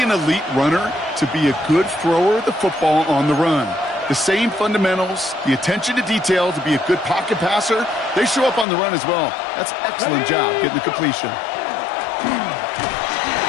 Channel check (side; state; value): right; drops out; at 8.7 s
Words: an elite runner to be a good thrower of the football on the run. The same fundamentals, the attention to detail to be a good pocket passer, they show up on the run as well. That's an excellent job getting the completion.